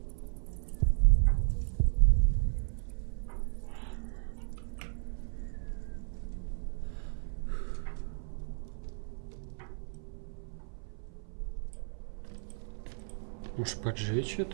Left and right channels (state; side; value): silent; left; 55 dB below the other